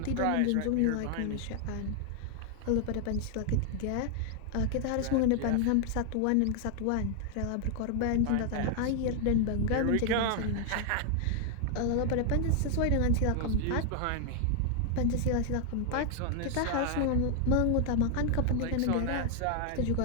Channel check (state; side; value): different; both; correlation 0.00